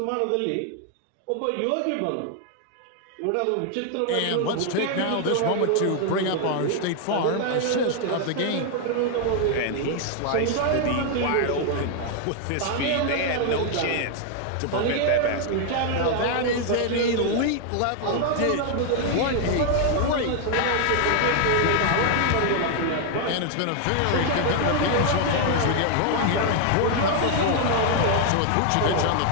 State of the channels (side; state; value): both; different; correlation 0.00